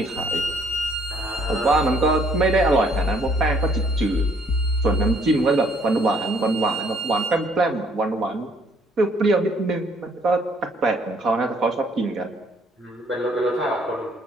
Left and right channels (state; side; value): normal; both; correlation 0.64